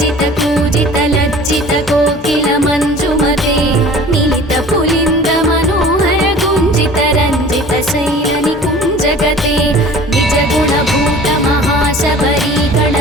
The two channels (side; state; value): both; normal; correlation 0.45